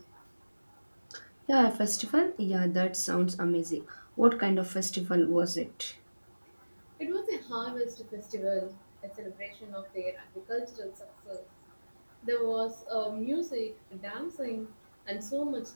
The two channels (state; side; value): inverted; both; correlation -1.00